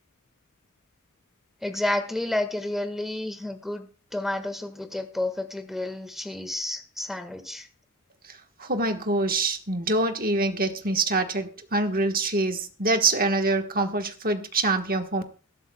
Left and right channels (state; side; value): normal; both; correlation 0.32